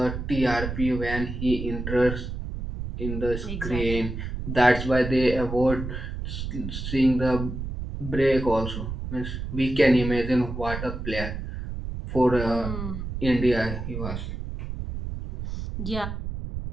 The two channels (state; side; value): noise; right; rumble, 6 dB below the sound